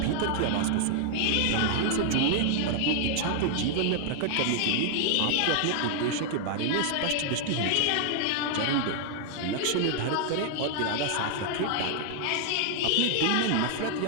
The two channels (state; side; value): different; both; correlation 0.00